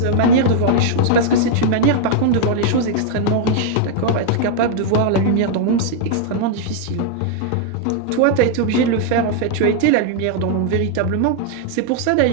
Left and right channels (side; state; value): both; different; correlation -0.01